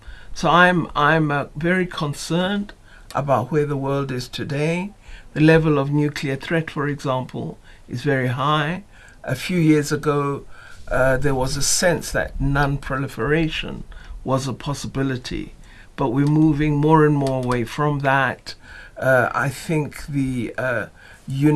So I'm very concerned about where the world is today. The level of nuclear threat, for example, is very high. A few years ago, there was a sense that non-proliferation was a possibility, but we're moving more and more away from that. I think the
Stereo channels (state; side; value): identical; both; correlation 1.00